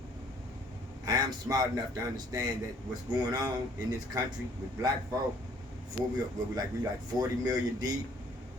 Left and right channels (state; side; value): normal; both; correlation 0.60